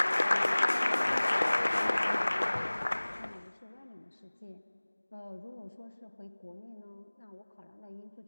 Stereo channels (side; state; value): both; inverted; correlation -1.00